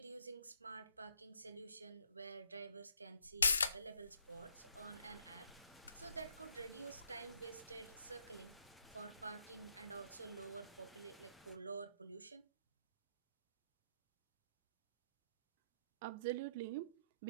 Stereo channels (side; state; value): both; inverted; correlation -0.72